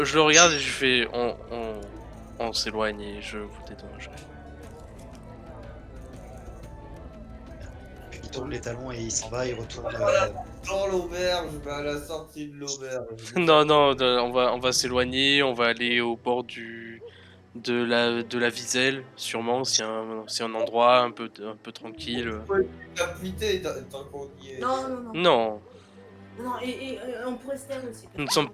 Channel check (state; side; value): identical; both; correlation 1.00